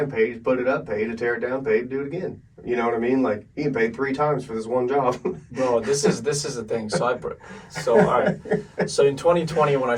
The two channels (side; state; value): both; identical; correlation 1.00